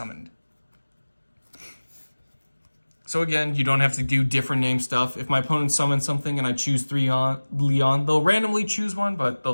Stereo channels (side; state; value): both; inverted; correlation -1.00